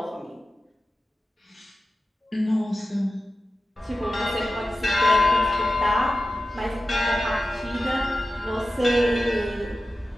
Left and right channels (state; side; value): normal; both; correlation 0.94